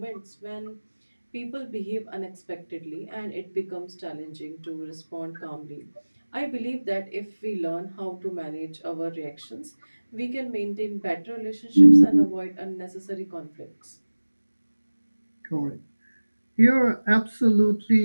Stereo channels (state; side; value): inverted; both; correlation -1.00